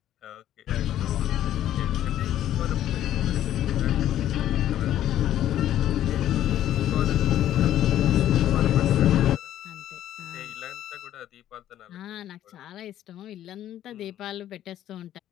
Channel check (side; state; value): right; quieter; 12.0 dB